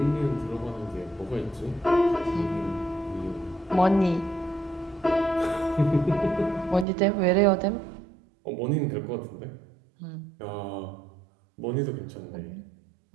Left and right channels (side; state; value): left; drops out; at 6.9 s